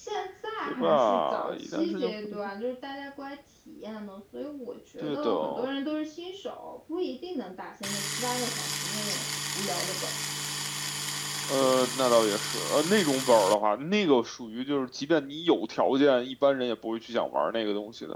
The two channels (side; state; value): both; identical; correlation 1.00